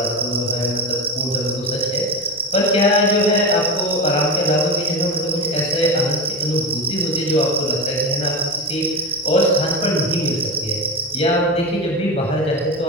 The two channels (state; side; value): normal; both; correlation 0.21